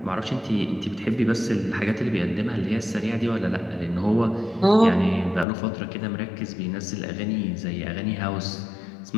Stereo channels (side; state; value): right; drops out; at 5.5 s